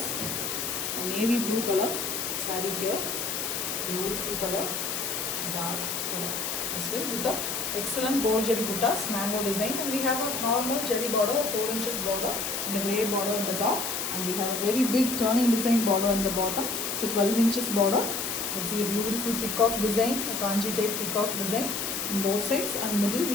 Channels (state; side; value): noise; left; hiss, 2 dB below the sound